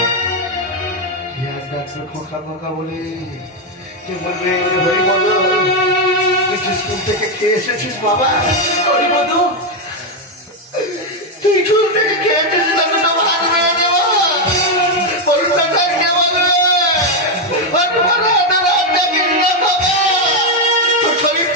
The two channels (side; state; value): both; normal; correlation 0.04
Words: খোকা খোকা বলে কে বলবে হরিপদ তুই স্কুল থেকে খেয়ে এসেছিস বাবা? হরিপদ তুই স্কুল থেকে খেয়ে এসেছিস না, দুটো ভাত মেরে দেবো পরীক্ষাটা কে বলবে? তোর